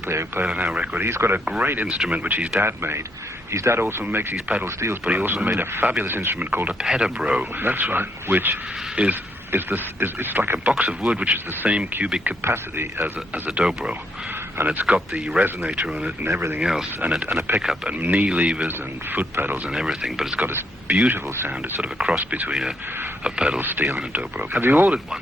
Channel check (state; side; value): normal; both; correlation 0.74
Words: who played on our record. He's got a great instrument which his dad made. His dad also makes these pedal steels, but he also made a fabulous instrument called a pedabro. That's right. Which is it's like a box of wood which is the same cubic capacity as a dobro, and it's got the resonator on it and everything else, and a pickup and knee levers and foot pedals and everything. But it's got this beautiful sound. It's sort of a cross between a pedal steel and a dobro. Have you ordered